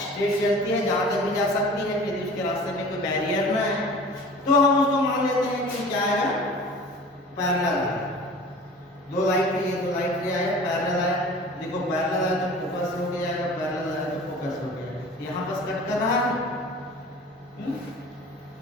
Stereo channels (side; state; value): both; normal; correlation 0.42